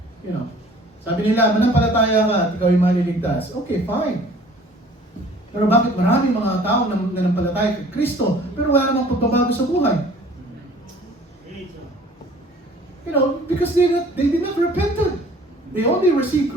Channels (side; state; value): both; normal; correlation 0.51